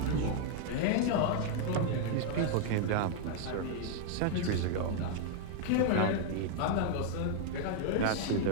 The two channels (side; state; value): both; different; correlation 0.00